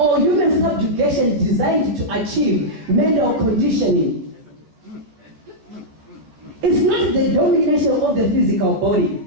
human subjugation designed to achieve mental conditioning. It's not the domination of the physical body.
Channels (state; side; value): late; left; 14 ms